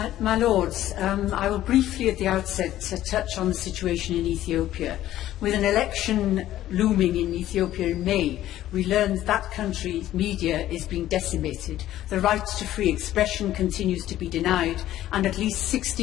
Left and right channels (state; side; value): quieter; right; 13.5 dB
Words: My Lords, I will briefly at the outset touch on the situation in Ethiopia. With an election looming in Ethiopia in May, we learned that country's media is being decimated, the right to free expression continues to be denied, and at least